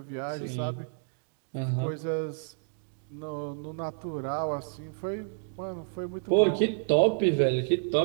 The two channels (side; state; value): left; silent; digital silence